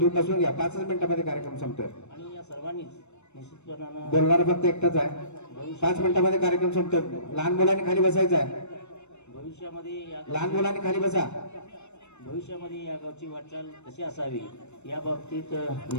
नसून घ्या. 5 मिनिटामध्ये कार्यक्रम संपतोय. आणि या सर्वांनीच निश्चितपणानं बोलणार फक्त एकटाच आहे. 5 मिनिटामध्ये कार्यक्रम संपतोय. लहान मुलांनी खाली बसायचं आहे. लहान मुलांनी खाली बसा. भविष्यामध्ये या गावची वाटचाल कशी असावी या बाबतीत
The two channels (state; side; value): late; right; 0.82 ms